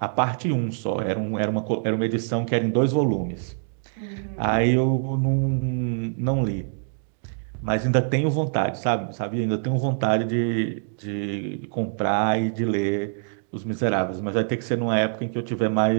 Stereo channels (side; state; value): left; silent; digital silence